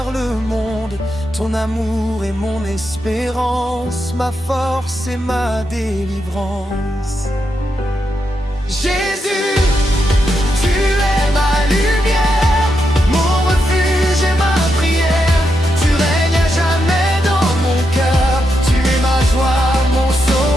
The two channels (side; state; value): both; normal; correlation 0.84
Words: le monde. Ton amour est mon espérance, ma force et ma délivrance. Jésus, tu es ma lumière, mon refuge et ma prière. Tu règnes à jamais dans mon cœur, tu es ma joie, mon